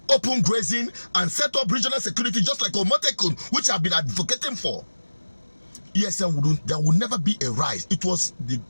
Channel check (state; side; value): inverted; both; correlation -1.00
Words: open grazing and set up regional security just like Omotekun, which I've been advocating for, ESN there would never be a rise. It was the